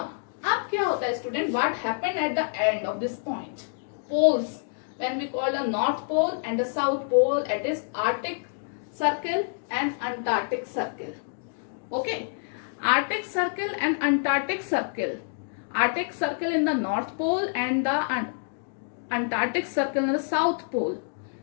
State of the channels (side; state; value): right; silent; digital silence